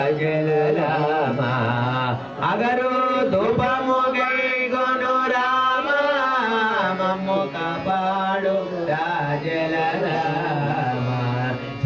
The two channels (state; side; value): identical; both; correlation 1.00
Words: రామ అగరు ధూపము గైకొను రామ మమ్ము కాపాడు రాజల రామ